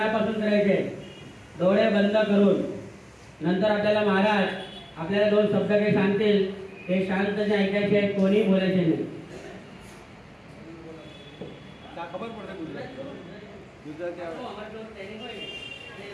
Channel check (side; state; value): both; identical; correlation 1.00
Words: करायचे डोळे बंद करून। नंतर आपल्याला महाराज आपल्याला दोन शब्द काही सांगतील, ते शांतपणे ऐकायचे आहेत, कोणी बोलायचे नाही। खबर पड़ता गुजरात